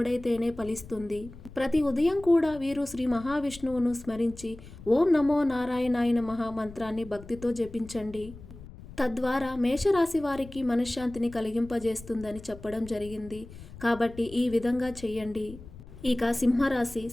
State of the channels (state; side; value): noise; left; rumble, 17 dB below the sound